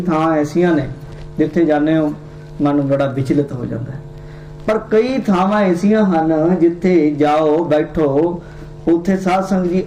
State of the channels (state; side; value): identical; both; correlation 1.00